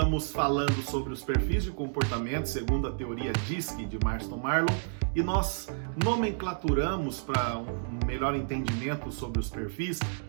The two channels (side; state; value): left; silent; digital silence